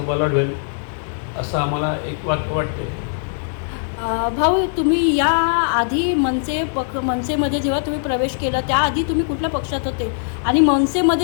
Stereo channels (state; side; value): silent; right; 65 dB below the other